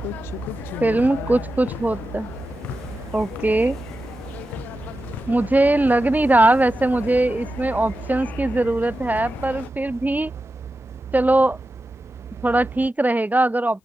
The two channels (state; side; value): normal; both; correlation 0.91